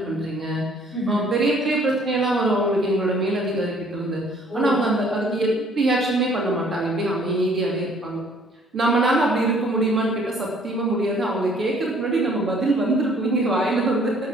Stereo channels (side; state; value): both; normal; correlation 0.59